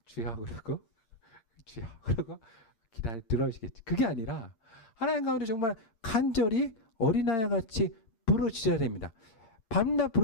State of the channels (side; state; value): right; late; 8.7 ms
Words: 주여 그러고 주여 그러고 기다려 들어주시겠지. 그게 아니라 하나님 가운데 정말 간절히 어린아이와 같이 부르짖어야 됩니다. 밤낮